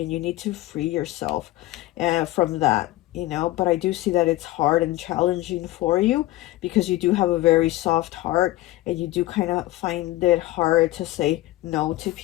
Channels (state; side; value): quieter; right; 16.9 dB